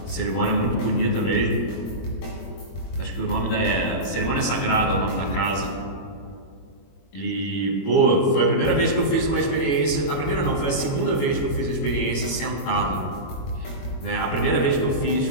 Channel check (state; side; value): late; right; 22 ms